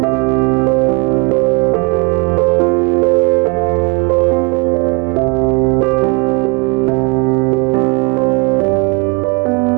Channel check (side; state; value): left; quieter; 30.6 dB